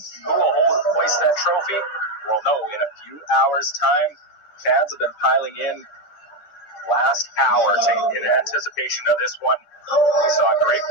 Who will hoist that trophy? We'll know in a few hours' time. Fans have been piling in last hour in anticipation of this one. We saw a great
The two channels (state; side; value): late; right; 10 ms